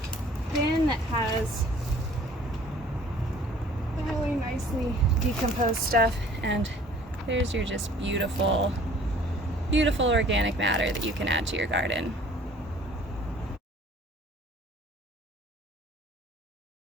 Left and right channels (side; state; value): both; normal; correlation 0.53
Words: bin that has really nicely decomposed stuff, and there's your just beautiful, beautiful organic matter that you can add to your garden.